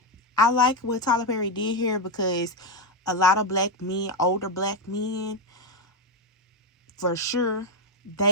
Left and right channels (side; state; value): both; normal; correlation 0.07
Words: I like what Tyler Perry did here because a lot of black men, older black men, for sure,